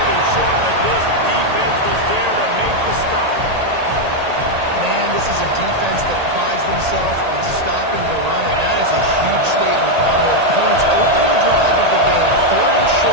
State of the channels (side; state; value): left; late; 1.8 ms